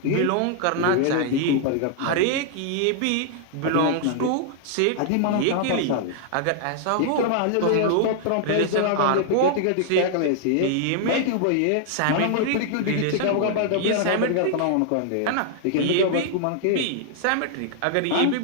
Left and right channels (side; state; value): both; different; correlation -0.01